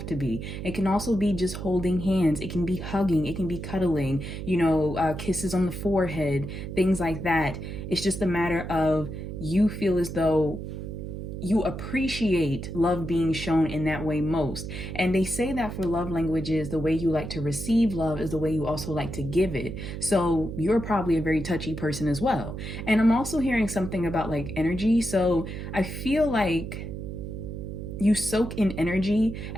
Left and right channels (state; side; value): noise; right; hum, 7 dB below the sound